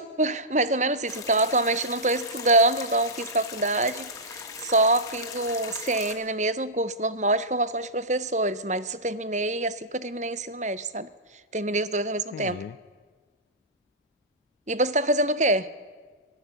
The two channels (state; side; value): normal; both; correlation -0.12